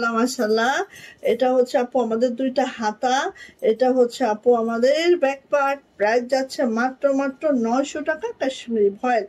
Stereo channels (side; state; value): both; identical; correlation 1.00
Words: মাশাল্লাহ, এটা হচ্ছে আপু আমাদের দুইটা হাতা, এটা হচ্ছে আপু আমাদের ব্যাক পার্ট। প্রাইস যাচ্ছে মাত্র মাত্র 900 টাকা। কাশ্মীরি ভয়েল।